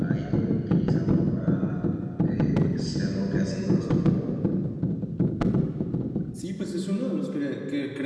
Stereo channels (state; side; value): identical; both; correlation 1.00